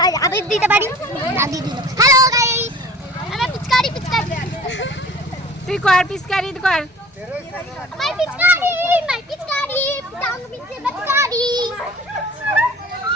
আবেদ দিতে পারি না দিয়ে দিল হ্যালো গাইস আমার পিচকারি তুই কর পিচকারি কর মাই পিচকারি টাং পিচকারি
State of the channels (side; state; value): both; normal; correlation 0.45